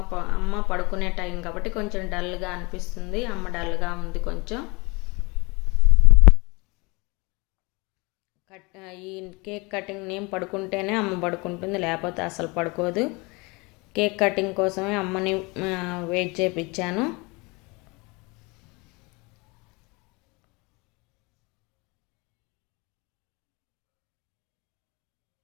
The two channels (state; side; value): quieter; right; 26.9 dB